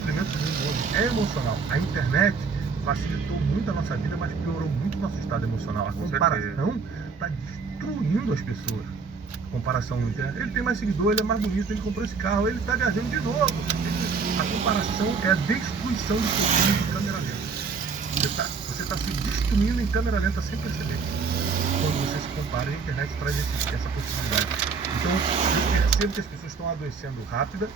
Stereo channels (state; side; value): quieter; left; 5.1 dB